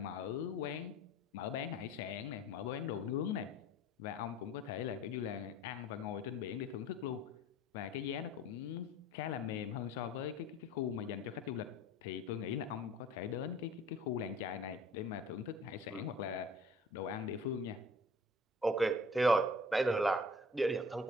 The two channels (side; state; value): both; normal; correlation 0.48